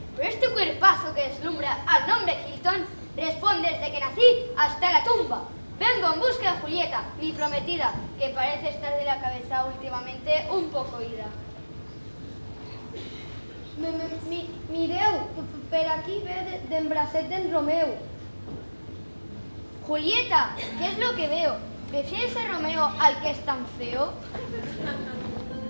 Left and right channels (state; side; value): inverted; both; correlation -1.00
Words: pero este cuerpazo que deslumbra al nombre Hilton responde desde que nací hasta la tumba. Vengo en busca de Julieta, mi prometida, que parece estar de la cabeza últimamente un poco ida. Mireu, per aquí ve d'en bracet d'en Romeu. Julieta, ¿qué es lo que veo? ¿Prefieres a Romeo al que es tan feo?